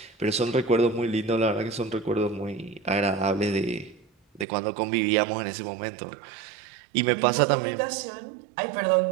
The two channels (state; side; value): drops out; left; at 4.5 s